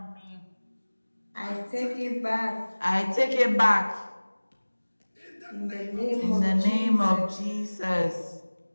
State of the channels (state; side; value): inverted; both; correlation -1.00